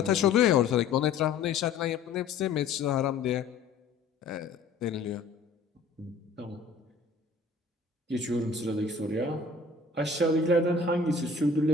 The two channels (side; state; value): right; quieter; 4.3 dB